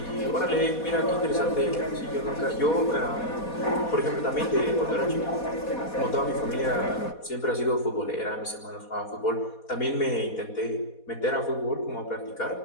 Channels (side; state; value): right; late; 4.2 ms